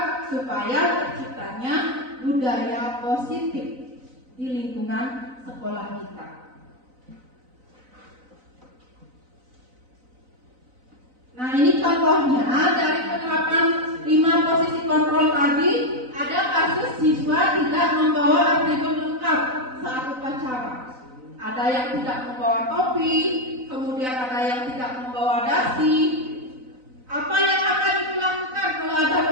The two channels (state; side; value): late; left; 4.0 ms